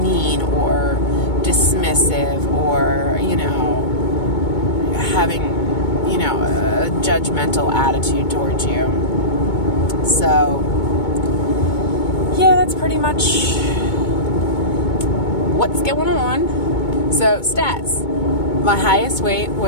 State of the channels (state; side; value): late; right; 2.2 ms